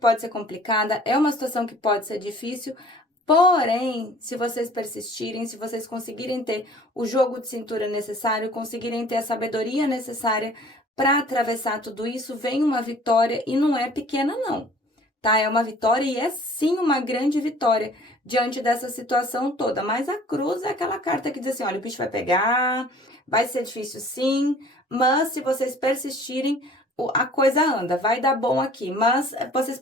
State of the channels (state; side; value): normal; both; correlation 0.51